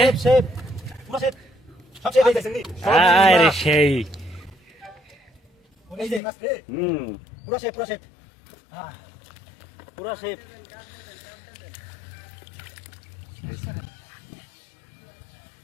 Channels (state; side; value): drops out; right; at 6.2 s